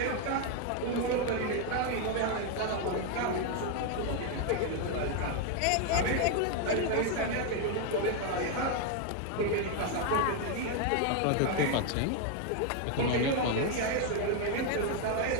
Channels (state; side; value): different; both; correlation 0.01